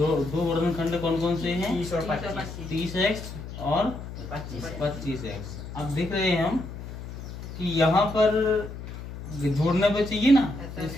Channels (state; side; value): noise; left; hum, 10 dB below the sound